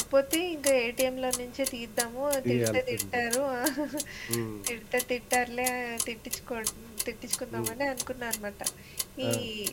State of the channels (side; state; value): both; identical; correlation 1.00